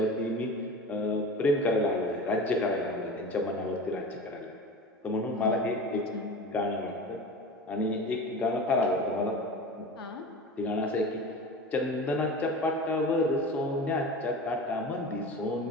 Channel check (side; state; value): both; normal; correlation 0.33